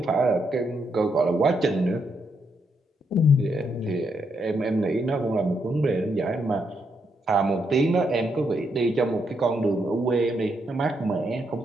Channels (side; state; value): both; normal; correlation 0.78